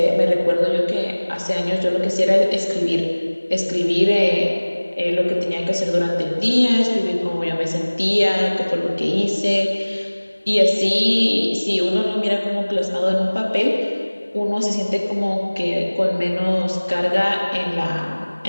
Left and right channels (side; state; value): both; inverted; correlation -1.00